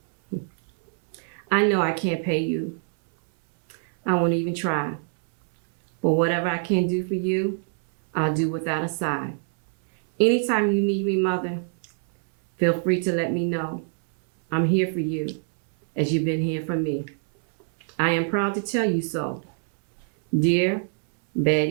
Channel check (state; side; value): silent; left; 62 dB below the other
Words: I know I can't pay you. I won't even try. But whatever I can do for you, I'll do without a sigh. Anytime you need me, Mother, feel free to let me know. I'm here for you, as you've been here for me. I am proud to tell you so. Dear